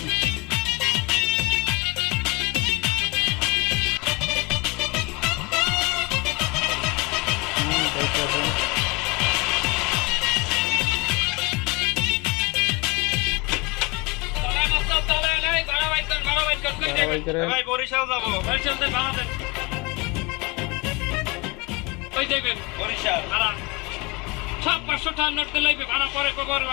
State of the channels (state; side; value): quieter; right; 26.8 dB